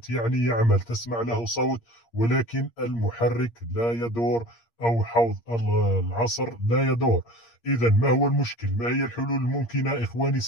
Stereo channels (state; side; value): late; right; 8.6 ms